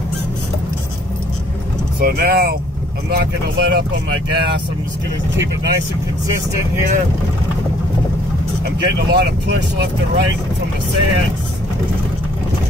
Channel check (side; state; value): both; normal; correlation 0.61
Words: So now I'm not going to let up on my gas. I'm just going to keep it nice and consistent here. I'm getting a lot of push left and right from the sand.